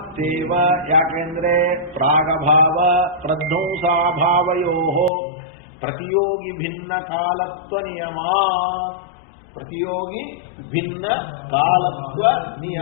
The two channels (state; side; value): drops out; right; at 5.1 s